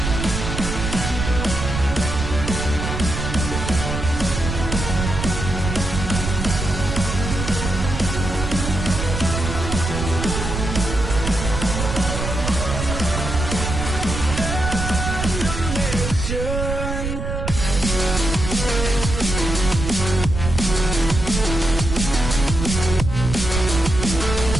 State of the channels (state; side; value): noise; right; rumble, 4 dB below the sound